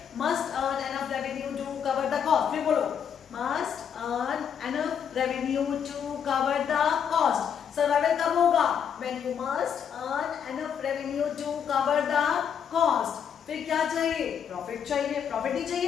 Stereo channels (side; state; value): right; quieter; 7.9 dB